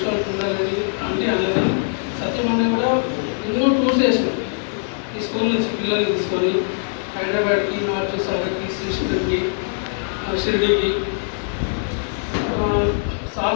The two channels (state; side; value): silent; right; digital silence